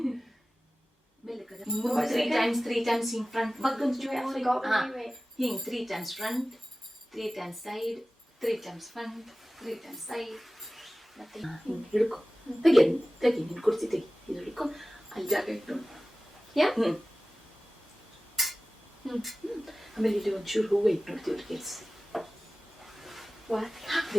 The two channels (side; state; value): both; normal; correlation 0.96